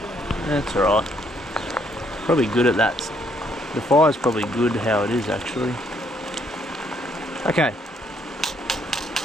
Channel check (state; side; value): normal; both; correlation 0.70